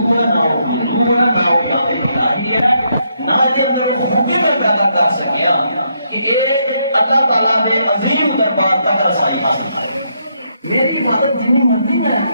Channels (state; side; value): inverted; both; correlation -0.76